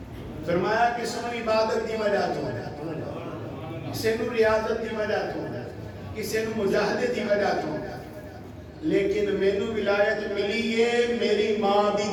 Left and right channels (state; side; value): identical; both; correlation 1.00